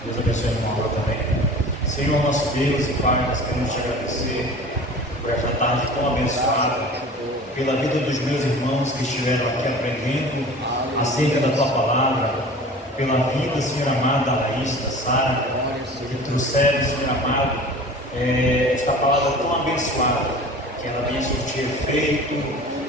Deus abençoe a irmã Laura também. Senhor, nosso Deus e Pai, nós queremos te agradecer por esta tarde tão abençoada, pela vida dos meus irmãos que estiveram aqui aprendendo acerca da Tua Palavra, pela vida, Senhor amado, da Laís, da Sara, que trouxeram, Senhor amado, esta palavra tão abençoada, que ela venha surtir efeito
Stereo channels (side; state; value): both; normal; correlation 0.40